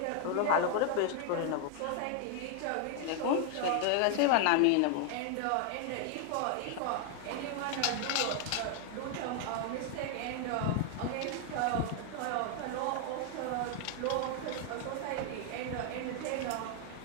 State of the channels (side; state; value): both; different; correlation 0.00